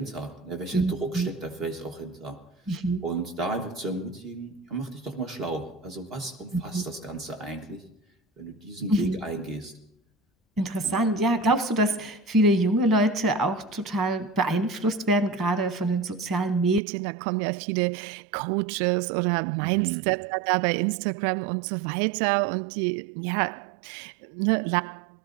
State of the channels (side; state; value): left; drops out; at 16.8 s